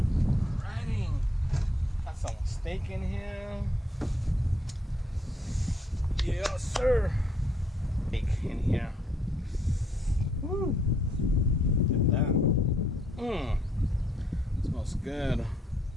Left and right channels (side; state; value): both; normal; correlation 0.69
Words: Alrighty. Got some steak in here. Yes, sir. Steak in here. Woo. Look at that. Smells good.